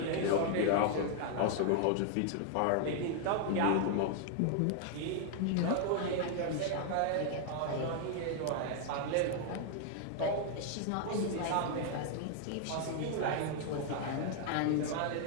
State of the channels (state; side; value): different; both; correlation 0.00